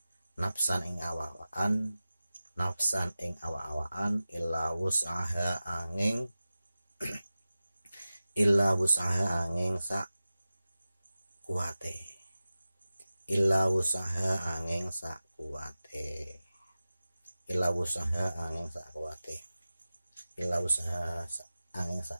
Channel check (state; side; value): inverted; both; correlation -0.95